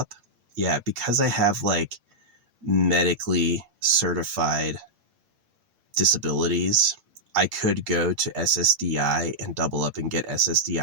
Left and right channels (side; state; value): left; late; 8.8 ms